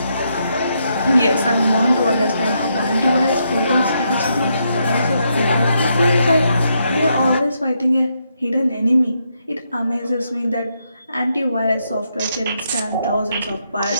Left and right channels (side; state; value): both; inverted; correlation -0.79